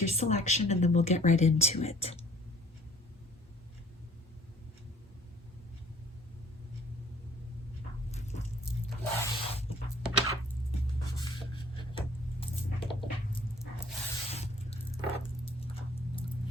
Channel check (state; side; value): normal; both; correlation 0.55